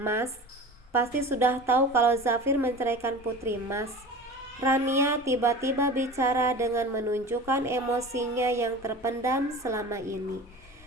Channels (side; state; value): both; normal; correlation 0.35